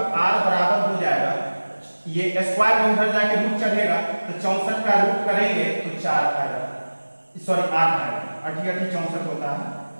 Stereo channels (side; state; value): both; inverted; correlation -1.00